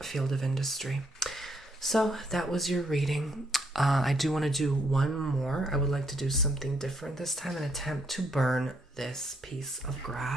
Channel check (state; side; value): normal; both; correlation 0.72